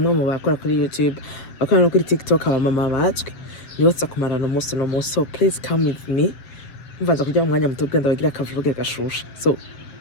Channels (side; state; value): right; late; 7.5 ms